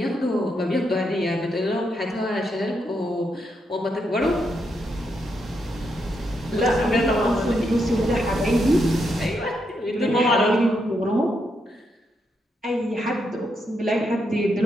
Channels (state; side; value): normal; both; correlation 0.81